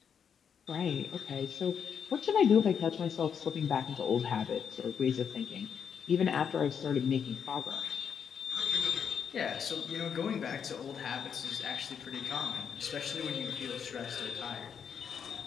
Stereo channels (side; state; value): right; quieter; 7.4 dB